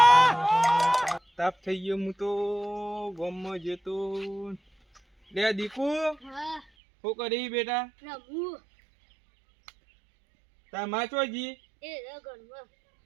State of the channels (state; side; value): drops out; left; at 6.7 s